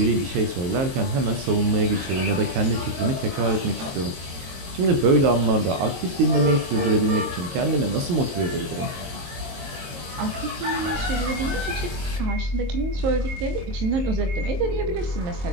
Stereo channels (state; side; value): late; left; 22 ms